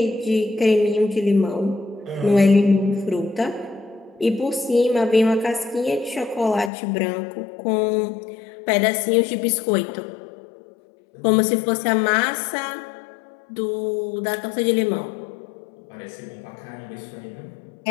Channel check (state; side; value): drops out; right; at 6.7 s